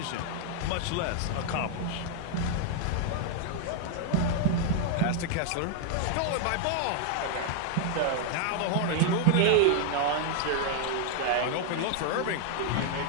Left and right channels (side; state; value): both; different; correlation 0.00